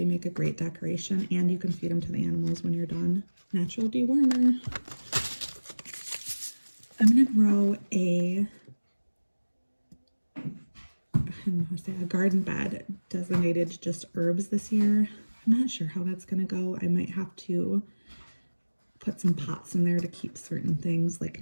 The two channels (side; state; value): both; inverted; correlation -1.00